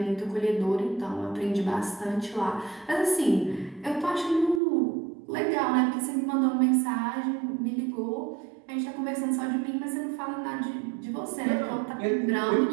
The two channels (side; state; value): left; drops out; at 4.6 s